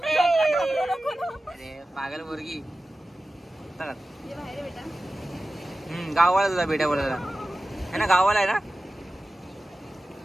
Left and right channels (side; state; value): both; normal; correlation 0.95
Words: अरे पागल मुर्गी. गावाला तुझा बेटा बोलायला है ना, गावाला आहे ना.